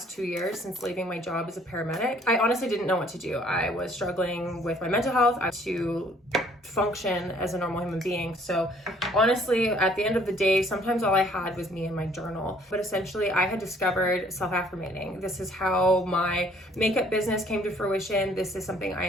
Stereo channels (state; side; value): normal; both; correlation 0.60